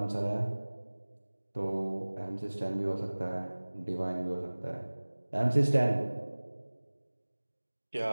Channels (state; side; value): inverted; both; correlation -1.00